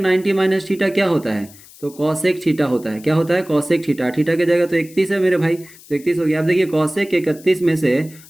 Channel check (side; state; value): left; noise; hiss, 22 dB below the sound